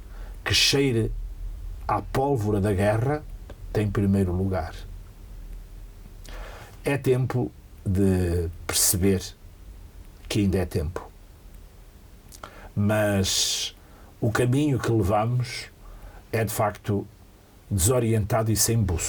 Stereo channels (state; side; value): identical; both; correlation 1.00